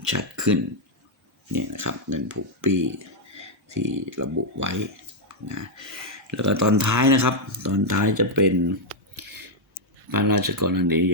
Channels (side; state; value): both; normal; correlation -0.02